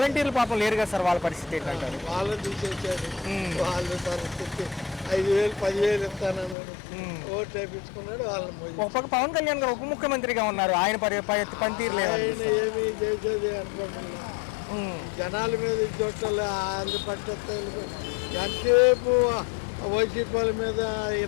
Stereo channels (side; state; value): right; drops out; at 6.6 s